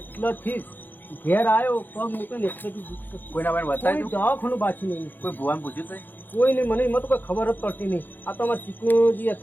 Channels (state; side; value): late; right; 0.090 ms